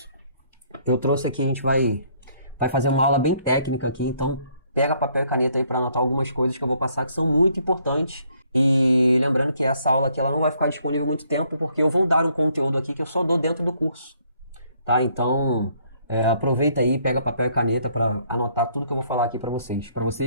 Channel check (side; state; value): both; inverted; correlation -0.66